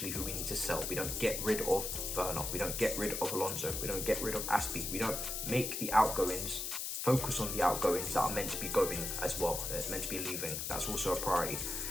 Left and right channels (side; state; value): left; noise; hiss, 3 dB below the sound